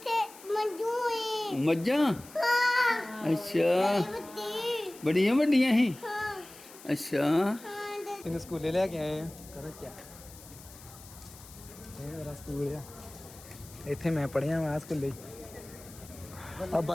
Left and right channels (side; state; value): left; noise; hiss, 19 dB below the sound